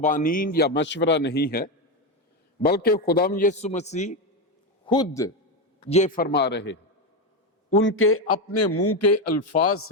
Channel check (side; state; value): both; normal; correlation 0.12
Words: یا مشورہ نہیں ہے، بلکہ خداوند یسوع مسیح خود یہ فرما رہے ہیں. ان کے اپنے منہ کے الفاظ